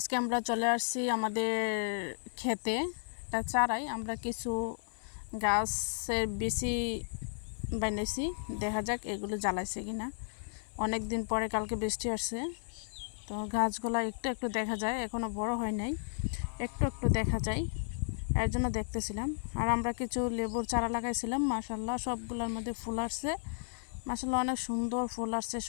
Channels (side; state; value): right; silent; 55 dB below the other